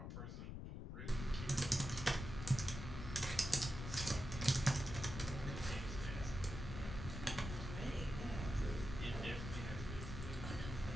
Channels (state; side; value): noise; left; rumble, 6 dB below the sound